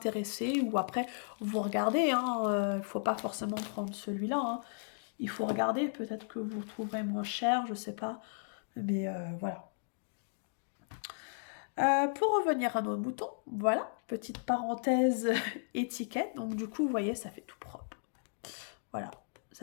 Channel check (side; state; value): right; silent; digital silence